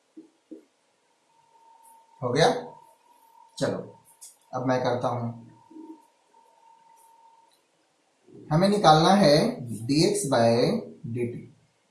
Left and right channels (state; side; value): identical; both; correlation 1.00